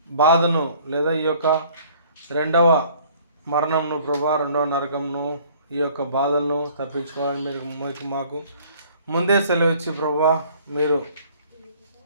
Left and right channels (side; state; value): both; inverted; correlation -0.55